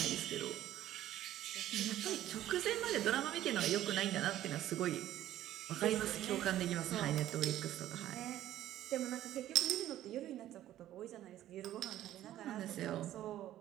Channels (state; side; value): quieter; left; 13.1 dB